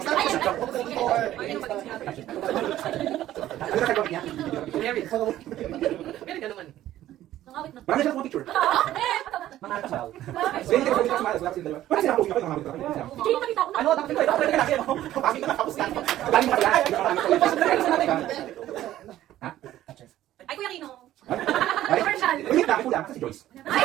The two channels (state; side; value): quieter; left; 13.5 dB